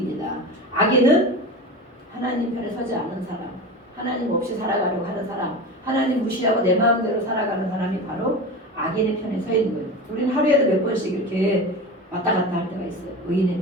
악인은 하나님 편에 서지 않은 사람, 하나님 없이 살아가려고 하는 사람, 하나님 무시하고 내 마음대로 살아가는 사람이 바로 악인의 편에 서 있는 거예요. 우리는 하루에도 몇 번씩 이렇게 왔다 갔다 할 때가 있어요. 의인의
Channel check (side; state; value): both; normal; correlation 0.28